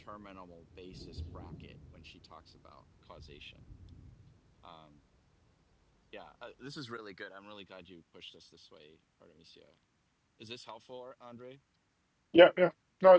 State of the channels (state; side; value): identical; both; correlation 1.00